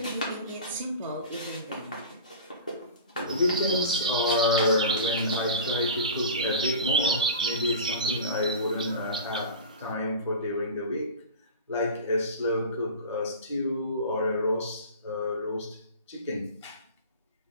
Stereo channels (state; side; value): inverted; both; correlation -0.33